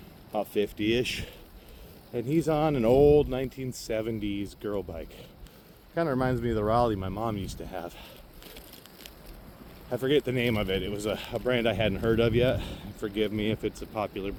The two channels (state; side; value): identical; both; correlation 1.00